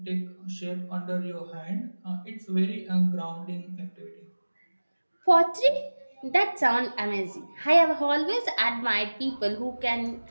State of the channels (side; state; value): both; inverted; correlation -1.00